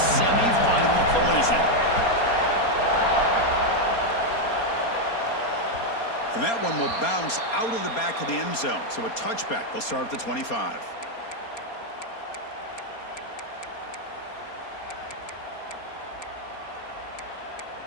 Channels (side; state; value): right; late; 4.3 ms